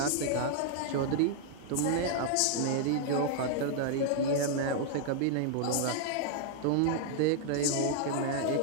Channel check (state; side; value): different; both; correlation -0.01